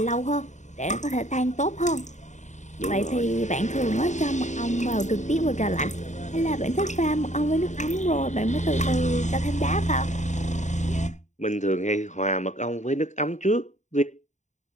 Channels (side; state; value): right; late; 0.34 ms